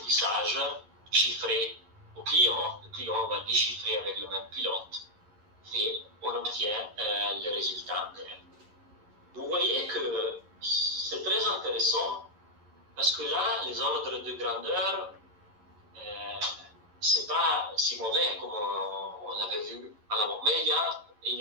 chiffrées au client. Le client va déchiffrer avec le même pilote et on obtient le résultat. Vous voyez que c'est très intéressant parce que là, les ordres de grandeur, c'est pas si mauvais comme on l'avait vu à l'avant. Mais il y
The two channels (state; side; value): late; left; 11 ms